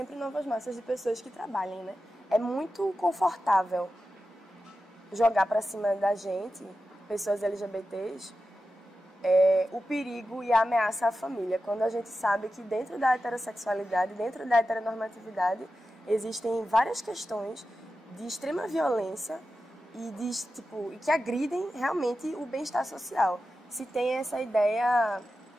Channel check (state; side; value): normal; both; correlation 0.91